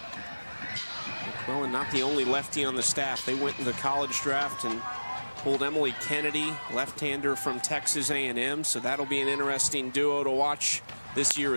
McQuillan not the only lefty on the staff. They went in the college draft and pulled Emily Kennedy, left-hander from Texas A&M, so that'll be an interesting duo to watch this year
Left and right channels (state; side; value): inverted; both; correlation -1.00